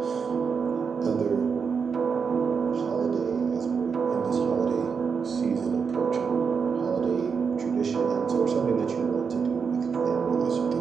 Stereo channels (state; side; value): quieter; left; 5.9 dB